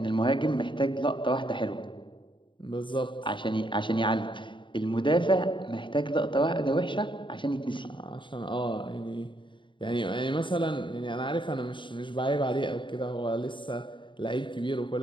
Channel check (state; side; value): late; right; 0.24 ms